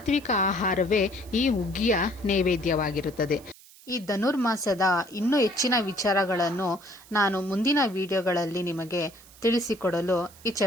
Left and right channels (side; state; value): right; noise; hiss, 23 dB below the sound